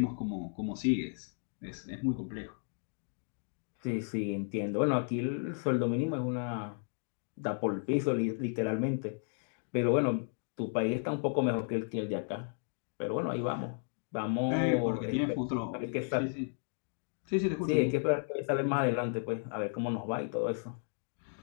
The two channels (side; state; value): right; silent; 55 dB below the other